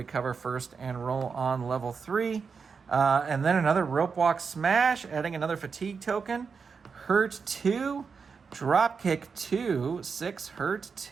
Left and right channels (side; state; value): left; quieter; 5.5 dB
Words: first and roll on level 3. And then another rope walk smash, adding another fatigue token. Hurt 2. Drop kick 2. 6 hurt